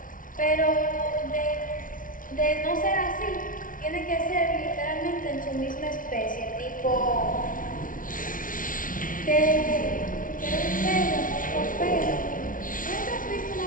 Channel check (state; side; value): late; right; 0.39 ms